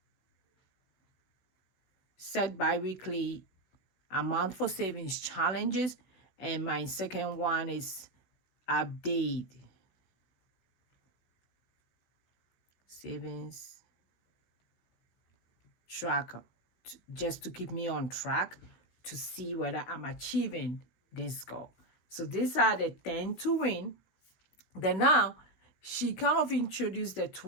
set bi-weekly amount for savings challenges. And my second one is update savings tracker, just to keep me on track to see whether I'm achieving this goal. So these are the 10 to win. Then now she kind of introduced the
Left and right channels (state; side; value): late; right; 16 ms